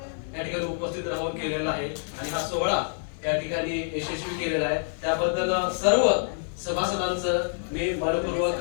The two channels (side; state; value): right; silent; 56 dB below the other